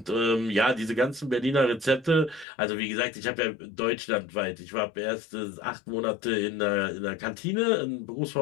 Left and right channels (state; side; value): drops out; right; at 2.5 s